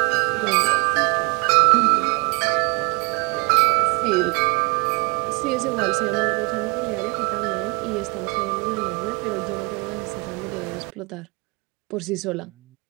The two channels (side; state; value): left; quieter; 29.3 dB